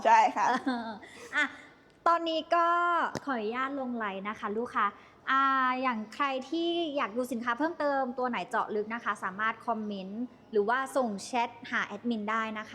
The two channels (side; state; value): both; identical; correlation 1.00